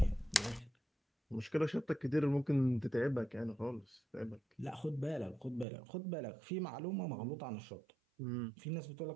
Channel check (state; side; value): drops out; left; at 5.7 s